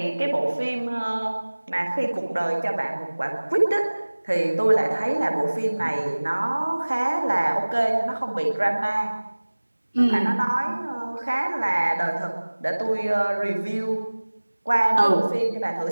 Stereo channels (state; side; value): inverted; both; correlation -1.00